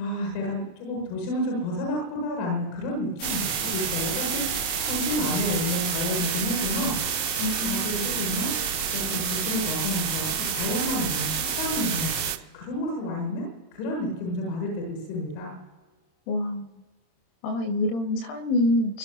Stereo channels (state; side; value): late; right; 26 ms